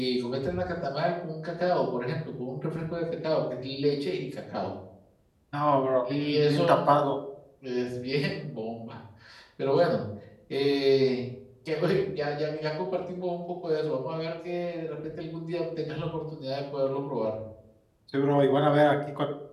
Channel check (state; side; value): identical; both; correlation 1.00